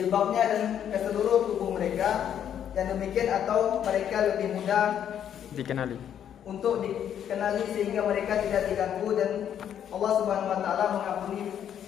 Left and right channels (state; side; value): quieter; right; 9.5 dB